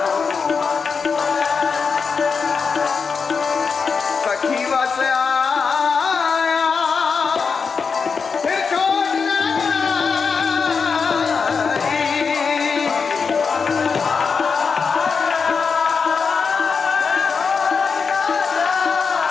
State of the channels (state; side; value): quieter; right; 5.4 dB